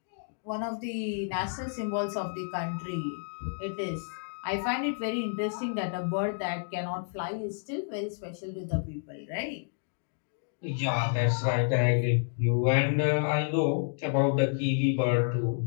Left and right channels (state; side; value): silent; right; digital silence